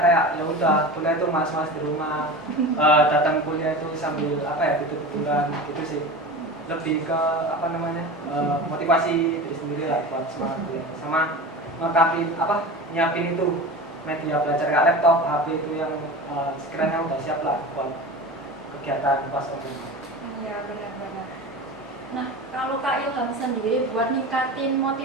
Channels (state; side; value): normal; both; correlation 0.31